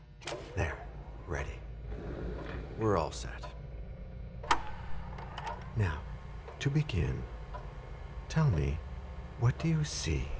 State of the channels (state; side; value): identical; both; correlation 1.00